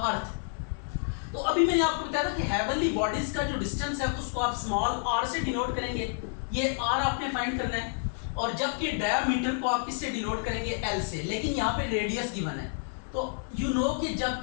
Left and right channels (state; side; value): silent; right; 57 dB below the other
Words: तो अभी मैंने आपको बताया था कि हेवनली बॉडीज का जो डिस्टेंस है उसको आप स्मॉल r से डिनोट करेंगे, ये r आपने फाइंड करना है। और जबकि डायमीटर को आप किससे डिनोट करेंगे, l से, लेकिन यहाँ पे रेडियस गिवन है। तो यू नो कि